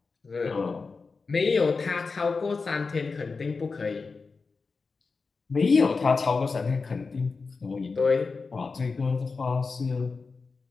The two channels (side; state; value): right; quieter; 4.4 dB